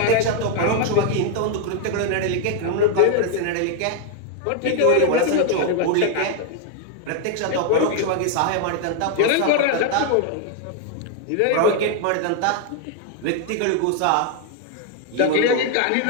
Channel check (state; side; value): different; both; correlation 0.00